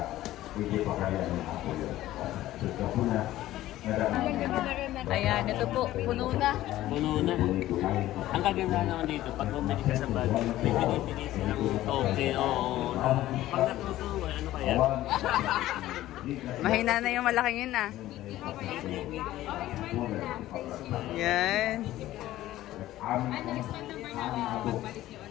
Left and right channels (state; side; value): quieter; right; 14.9 dB